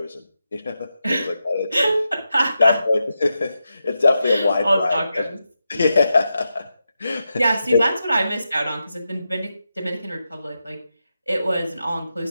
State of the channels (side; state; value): both; inverted; correlation -0.88